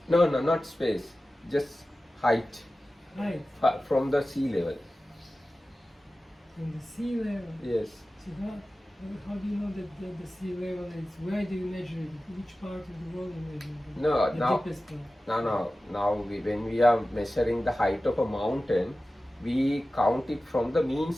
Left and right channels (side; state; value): both; normal; correlation 0.95